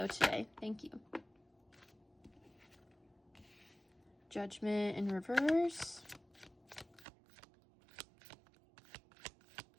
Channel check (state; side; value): drops out; left; at 7.1 s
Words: today? Thank you. Judgment in reverse.